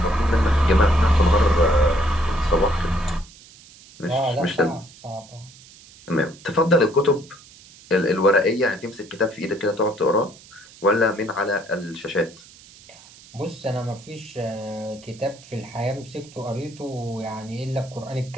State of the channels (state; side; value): noise; right; hiss, 22 dB below the sound